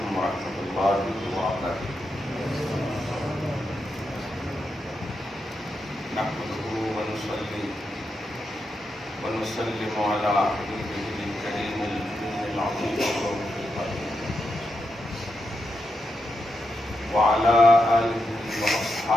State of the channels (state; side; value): normal; both; correlation 0.85